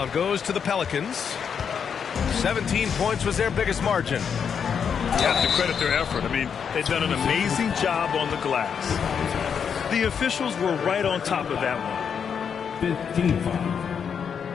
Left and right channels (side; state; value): right; quieter; 7.1 dB